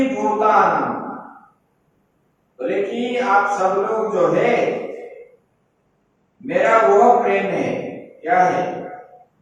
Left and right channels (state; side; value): identical; both; correlation 1.00